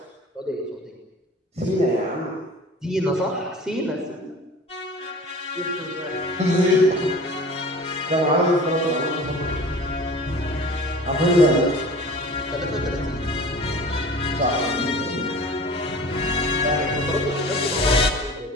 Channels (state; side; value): normal; both; correlation 0.41